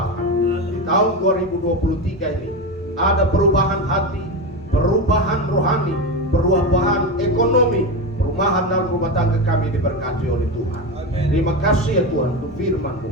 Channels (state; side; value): normal; both; correlation 0.18